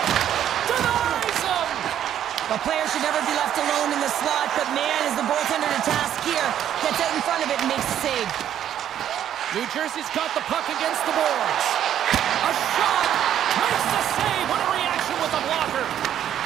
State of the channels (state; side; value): quieter; left; 10.4 dB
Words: Denies him. The player should never be left alone in the slot, but man, is the goaltender to task here. Gets out in front of it and makes the save. New Jersey's got the puck against the boards. A shot! Makes the save! What a reaction with the blocker!